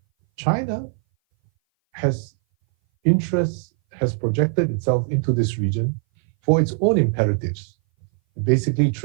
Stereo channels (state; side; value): silent; left; 59 dB below the other